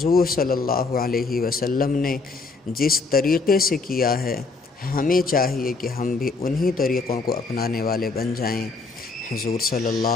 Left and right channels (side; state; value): right; quieter; 4.1 dB